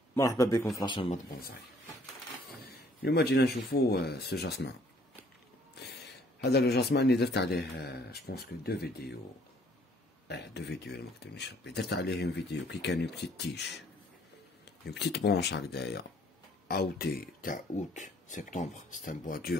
مرحبا بكم في لاشين مات بونساي. اليوم جينا نشوفو سو جاسمان. هذا لو جاسمان اللي درت عليه جوبونس كو دو فيديو إلا مكتبنيش ربي. درت عليه اون فيديو كي كان اون بتيت تيش، اون بتيت برونش هكدايا اوتي تاع اوت سبتمبر. سيت ان بوا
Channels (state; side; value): normal; both; correlation 0.61